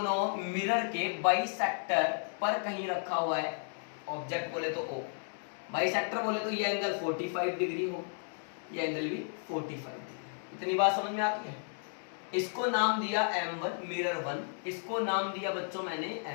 मिरर के बाइसेक्टर पर कहीं रखा हुआ है। ऑब्जेक्ट बोले तो O, बाइसेक्टर बोले तो ये एंगल 45 डिग्री हो, ये एंगल भी 45 डिग्री। इतनी बात समझ में आती है। इसको नाम दिया M1 मिरर 1, इसको नाम दिया बच्चों मैंने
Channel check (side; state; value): right; silent; 55 dB below the other